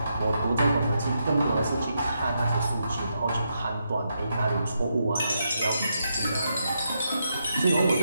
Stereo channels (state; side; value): inverted; both; correlation -0.82